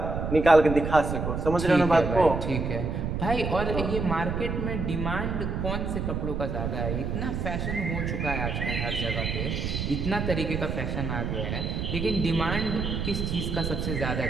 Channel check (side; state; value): right; noise; rumble, 2 dB below the sound